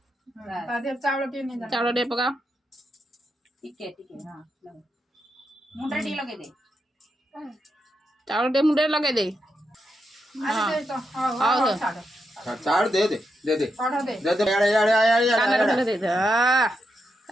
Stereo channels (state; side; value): normal; both; correlation 0.84